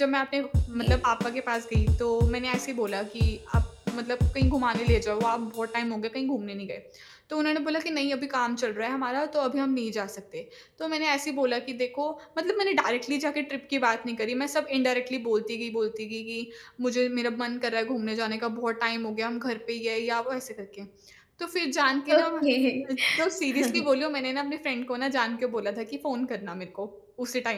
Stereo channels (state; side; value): identical; both; correlation 1.00